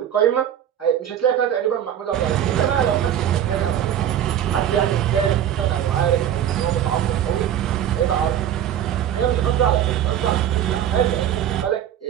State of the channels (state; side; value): quieter; left; 10.3 dB